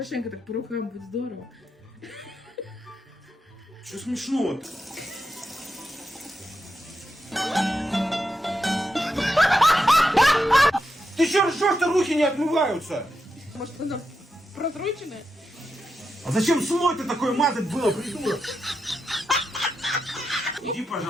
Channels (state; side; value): normal; both; correlation 0.87